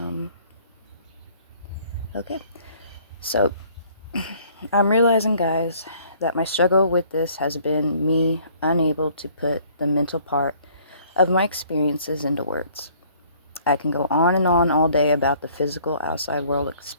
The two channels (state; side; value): inverted; both; correlation -0.58